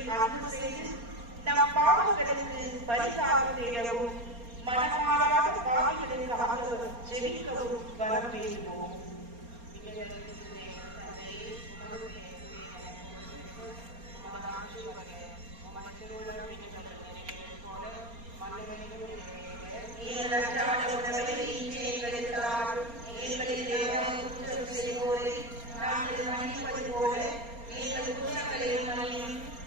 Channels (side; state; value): left; late; 4.3 ms